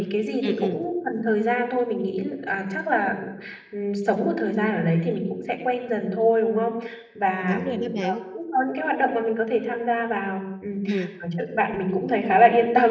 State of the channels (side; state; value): both; identical; correlation 1.00